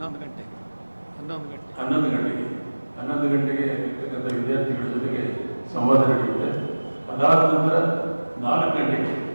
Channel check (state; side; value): inverted; both; correlation -1.00